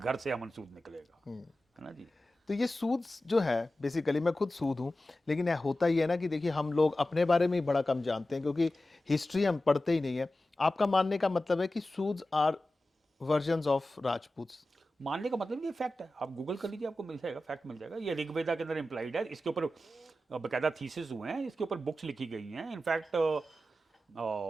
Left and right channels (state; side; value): normal; both; correlation 0.94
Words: से अमन सूद निकलेगा, हम्म। है ना जी। तो ये सूद जो है, बेसिकली मैं खुद सूद हूँ, लेकिन यह होता ही है ना कि देखिए हम लोग अपने बारे में ही बड़ा कम जानते हैं क्योंकि हिस्ट्री हम पढ़ते ही नहीं है। आपका मानने का मतलब है कि सूद्स आर वर्जन्स ऑफ राजपूत्स। मानने का मतलब ये फैक्ट है। आप गूगल कर लीजिए, आपको मिल जाएगा, फैक्ट मिल जाएगा। ये ऋग्वेदा के अंदर इम्प्लाइड है। इसके ऊपर बकायदा थीसिस हुए हैं, इसके ऊपर बुक्स लिखी गई हैं। In fact